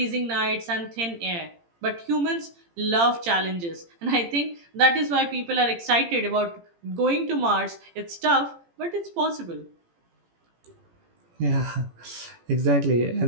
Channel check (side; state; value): left; late; 18 ms